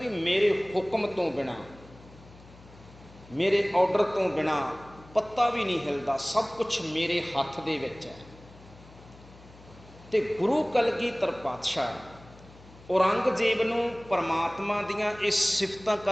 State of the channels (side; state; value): left; noise; hum, 22 dB below the sound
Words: ਮੇਰੇ ਹੁਕਮ ਤੋਂ ਬਿਨਾਂ, ਮੇਰੇ ਆਰਡਰ ਤੋਂ ਬਿਨਾਂ ਪੱਤਾ ਵੀ ਨਹੀਂ ਹਿਲਦਾ, ਸਭ ਕੁਛ ਮੇਰੇ ਹੱਥ ਦੇ ਵਿੱਚ ਹੈ। ਤੇ ਗੁਰੂ ਕਲਗੀਧਰ ਪਾਤਸ਼ਾਹ ਔਰੰਗਜ਼ੇਬ ਨੂੰ ਪਰਮਾਤਮਾ ਦੀਆਂ ਇਹ ਸਿਫਤਾਂ